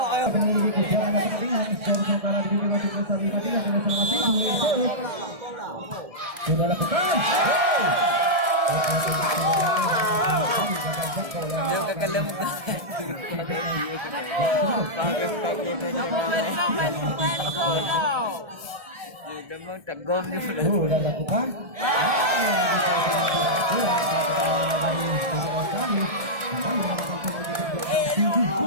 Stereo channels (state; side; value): late; left; 1.7 ms